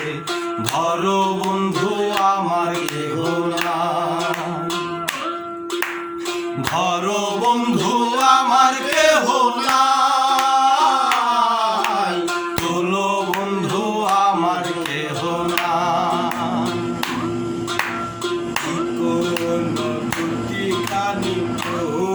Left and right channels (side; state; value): both; identical; correlation 1.00